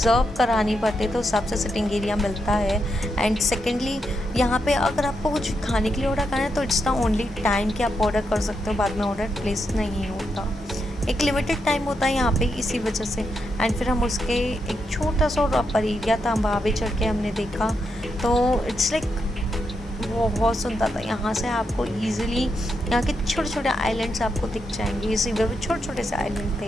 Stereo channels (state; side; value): normal; both; correlation 0.83